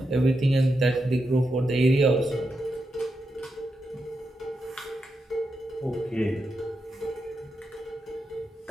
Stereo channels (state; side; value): normal; both; correlation 0.86